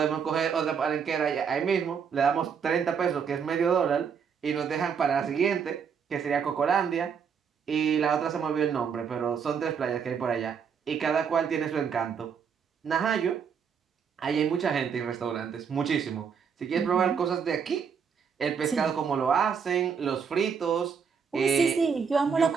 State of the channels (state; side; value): quieter; left; 6.7 dB